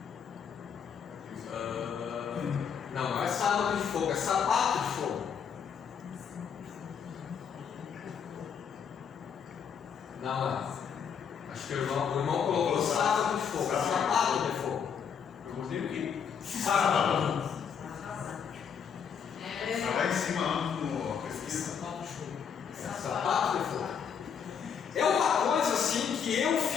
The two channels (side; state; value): right; quieter; 7.2 dB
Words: Não é sábado de fogo, é sapato de fogo. Não. Acho que o irmão colocou sábado de fogo, sapato de fogo. Eu gostei do quê? Sábado. Está lá em cima no pesquisa. Sapato de fogo. É uma coisa assim que eu